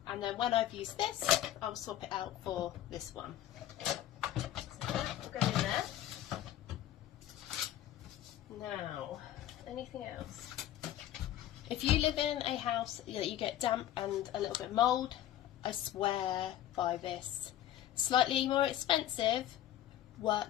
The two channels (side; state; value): right; quieter; 12.3 dB